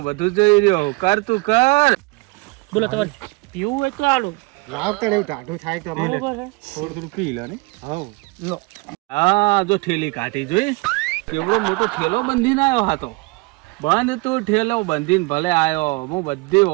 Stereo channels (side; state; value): left; quieter; 26.1 dB